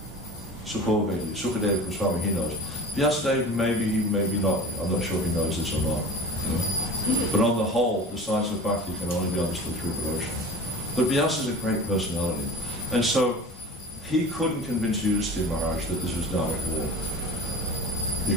Sukho Vedi, Sukadeva Goswami, he knows. Vyasadeva, maybe not, I'm not sure if he knows this or not. But on the whole, the science of bhakti can only be understood through devotion. But Vyasa is a great personality. And so, he couldn't convince Yudhisthira Maharaj that this was Dharmic war. He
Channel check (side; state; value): both; normal; correlation 0.37